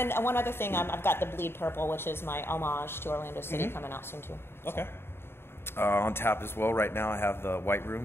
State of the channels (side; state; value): right; late; 0.11 ms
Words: one other thing, I've got the Bleed Purple, which is my homage to Orlando City, coming out soon too. Okay. On tap as well right now, I have the White